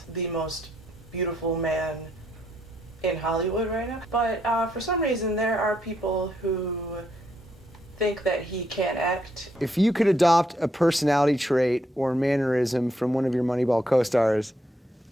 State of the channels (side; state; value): both; normal; correlation 0.75